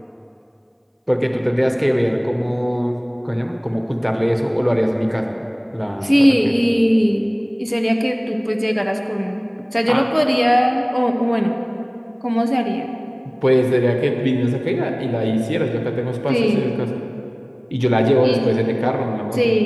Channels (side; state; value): both; identical; correlation 1.00